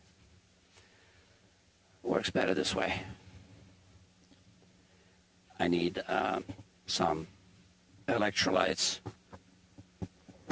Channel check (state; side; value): identical; both; correlation 1.00